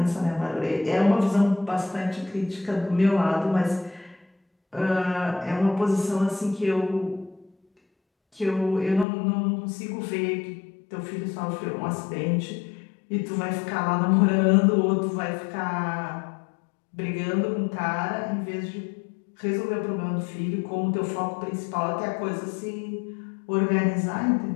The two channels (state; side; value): drops out; right; at 9.1 s